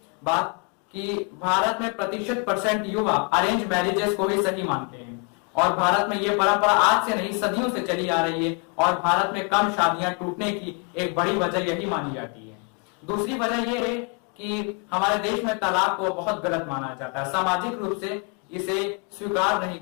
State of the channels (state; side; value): quieter; right; 34.4 dB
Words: बात कि भारत में % युवा अरेंज मैरिजेस को ही सही मानते हैं और भारत में ये परंपरा आज से नहीं सदियों से चली आ रही है और भारत में कम शादियां टूटने की एक बड़ी वजह यही मानी जाती है। दूसरी वजह यह है कि हमारे देश में तलाक को बहुत गलत माना जाता है। सामाजिक रूप से इसे स्वीकार नहीं